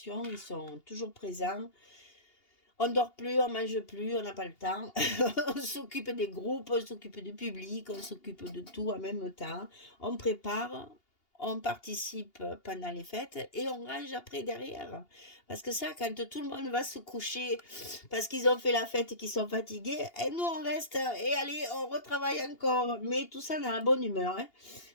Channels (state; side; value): late; right; 2.8 ms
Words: Ils sont toujours présents. On ne dort plus, on ne mange plus, on n'a pas le temps. On s'occupe des groupes, on s'occupe du public, on s'occupe de tout en même temps. On prépare, on participe pendant les fêtes et on range après derrière. Parce que ça, quand tout le monde va se coucher parce qu'ils ont fait la fête et qu'ils sont fatigués, et nous on reste et allez, on retravaille encore. Mais tout ça dans la bonne humeur. Hein.